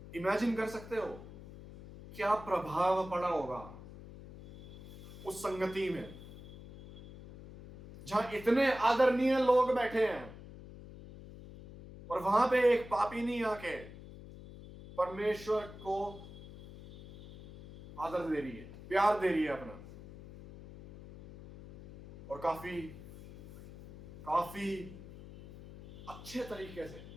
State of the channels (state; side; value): noise; left; hum, 15 dB below the sound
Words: इमेजिन कर सकते हो क्या प्रभाव पड़ा होगा उस संगति में, जहां इतने आदरणीय लोग बैठे हैं और वहां पे एक पापिनी आके परमेश्वर को आदर दे रही है, प्यार दे रही है अपना, और काफी अच्छे तरीके से,